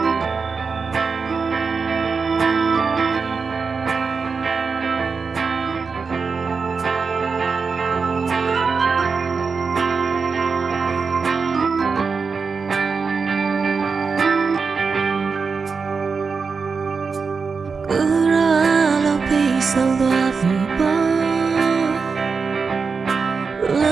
ဆုံးသွားပြီပေါ့လ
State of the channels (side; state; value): left; quieter; 5.0 dB